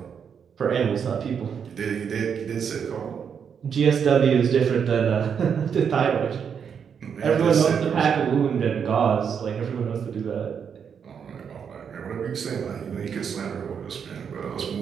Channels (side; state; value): left; quieter; 7.2 dB